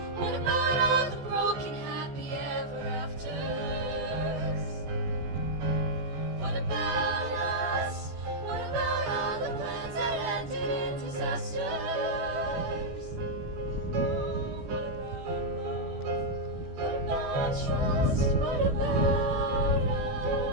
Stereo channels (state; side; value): late; left; 14 ms